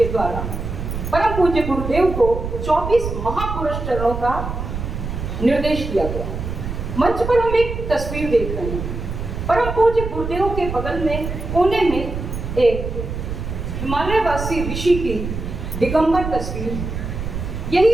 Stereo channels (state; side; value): noise; right; rumble, 5 dB below the sound